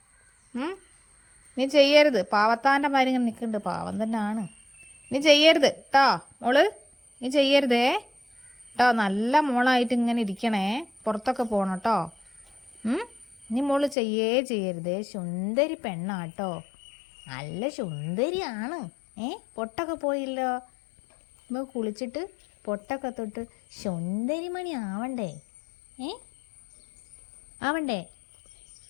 നീ ചെയ്യരുത്. പാവത്താൻ്റെ മാതിരി ഇങ്ങനെ നിൽക്കുന്നുണ്ട്. പാവം തന്നെ ആണ്. നീ ചെയ്യരുത് കേട്ടോ മോള്. നീ ചെയ്യരുതേ കേട്ടോ. നല്ല മോളായിട്ട് ഇങ്ങനെ ഇരിക്കണേ. പുറത്തൊക്കെ പോകണം കേട്ടോ. നീ മോള് ചെയ്യരുതേ. സുന്ദരി പെണ്ണാട്ടോ. നല്ല സുന്ദരിയാണ്. പൊട്ടൊക്കെ പോയില്ലോ. നമുക്ക് കുളിച്ചിട്ട് പൊട്ടൊക്കെ തൊട്ട് സുന്ദരിമണി ആവണ്ടേ? ആവണ്ടേ?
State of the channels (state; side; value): drops out; right; at 14.0 s